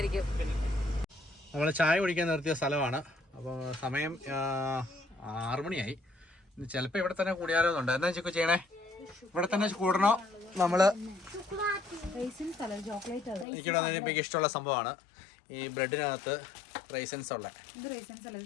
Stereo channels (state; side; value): drops out; right; at 13.5 s